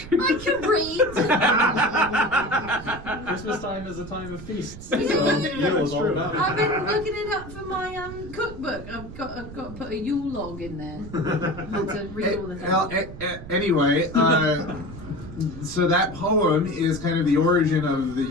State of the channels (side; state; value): right; noise; rumble, 13 dB below the sound